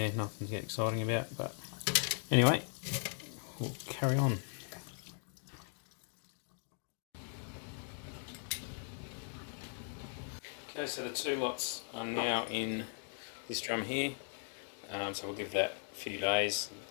nothing to get exciting about, but anyway, we'll carry on. Okay, so the 2 lots are now in this drum here, so we'll give that a few days.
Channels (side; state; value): right; silent; 52 dB below the other